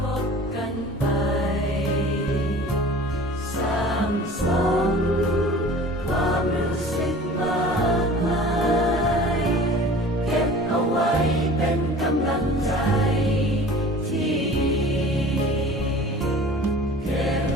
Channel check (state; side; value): normal; both; correlation 0.43